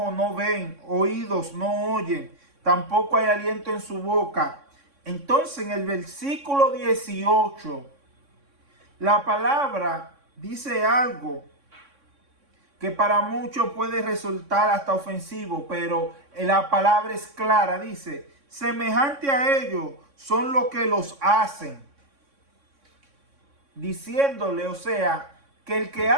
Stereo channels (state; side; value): late; left; 3.6 ms